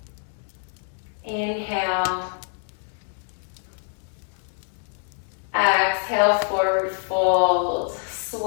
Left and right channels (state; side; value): silent; right; 61 dB below the other